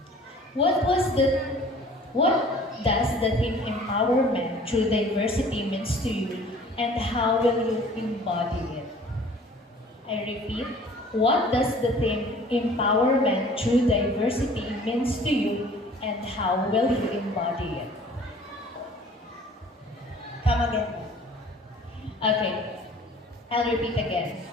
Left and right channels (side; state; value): both; normal; correlation 0.50